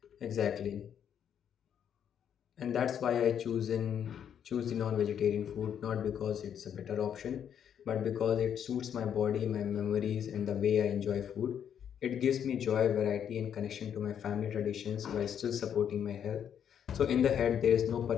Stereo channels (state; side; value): quieter; right; 8.7 dB